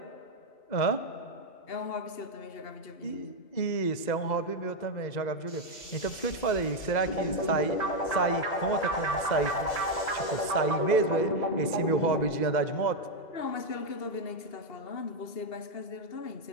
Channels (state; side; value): late; right; 2.0 ms